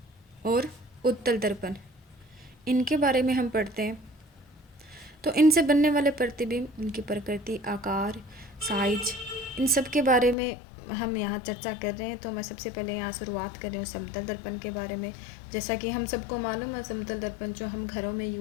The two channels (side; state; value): right; drops out; at 10.4 s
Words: और उत्तल दर्पण। इनके बारे में हम पढ़ते हैं। तो इनसे बनने वाले प्रतिबिंब, इनकी प्रकृति, आकार, साइज, इन सब के बारे में हम यहाँ चर्चा कर रहे हैं। तो मैं सबसे पहले यहाँ शुरुआत कर रही हूँ समतल दर्पण के बारे में। जैसा कि हम सबको मालूम है, समतल दर्पण जो हम घरों में